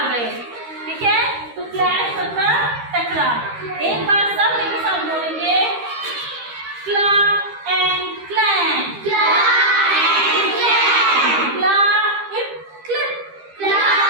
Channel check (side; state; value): left; late; 13 ms